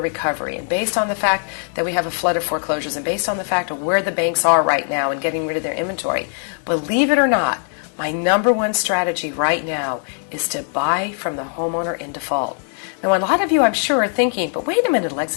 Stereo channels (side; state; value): right; silent; 56 dB below the other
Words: recovery, and based on the fact that we have a flood of foreclosures, and based on the fact of where the banks are right now and getting rid of their inventory, believe it or not, my number 1 strategy right now is to buy from the homeowner in default. Now, a lot of you, I'm sure, are thinking, but wait a minute,